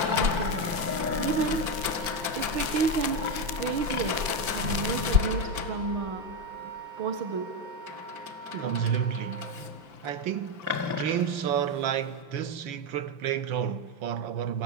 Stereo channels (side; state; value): left; late; 5.9 ms